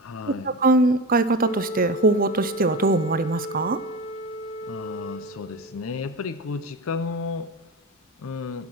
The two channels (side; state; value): both; normal; correlation 0.26